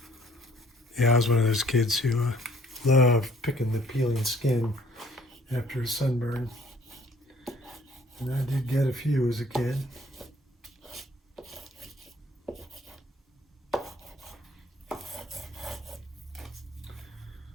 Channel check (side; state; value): both; normal; correlation 0.59